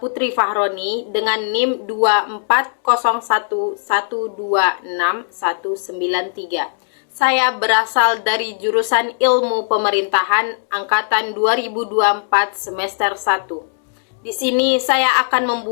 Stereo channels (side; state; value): right; silent; digital silence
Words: Fahroni dengan NIM 2401126193. Saya berasal dari jurusan Ilmu Pemerintahan angkatan 2024 semester 1. Di sini saya akan